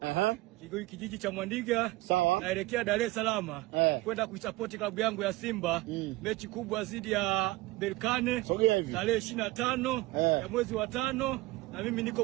Kijiji cha Mwandiga. Sawa. Naelekea Dar es Salaam kwenda kuisupport klabu yangu ya Simba. Mechi kubwa dhidi ya Berkane tarehe 25 ya mwezi wa 5, na mimi niko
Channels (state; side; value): quieter; left; 20.2 dB